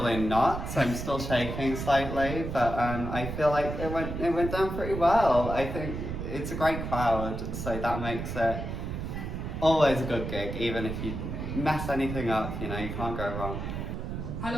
in knots. I'm still shaking slightly, but I feel like it went down pretty well. I think it's a great crowd, so that makes it always a good gig, even if you mess anything up. You can't go wrong.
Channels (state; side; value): noise; right; rumble, 5 dB below the sound